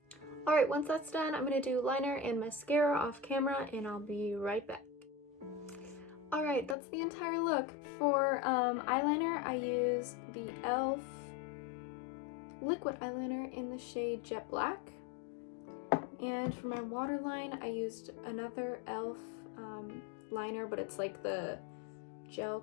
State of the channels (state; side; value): drops out; right; at 6.8 s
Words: Alright, once that's done, I'm going to do liner and mascara off camera, and I'll be right back. Alright, that's the entire look. For eyeliner, I use the e.l.f. liquid eyeliner in the shade Jet Black. And for my waterline, I used another e.l.f. liner, but it's like the gel